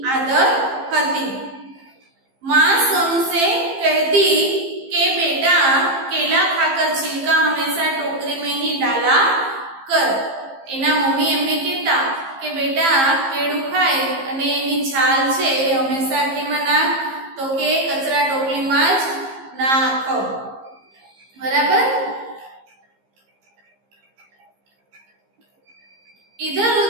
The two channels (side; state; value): left; late; 15 ms